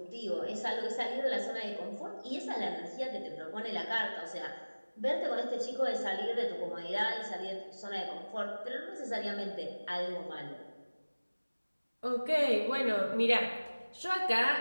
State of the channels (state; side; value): inverted; both; correlation -1.00